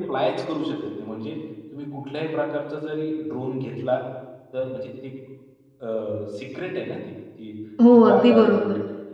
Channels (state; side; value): identical; both; correlation 1.00